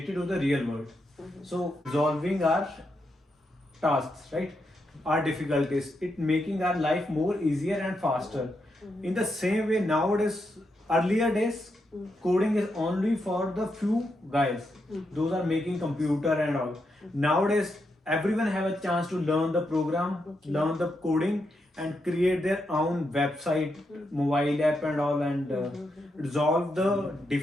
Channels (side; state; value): both; normal; correlation 0.83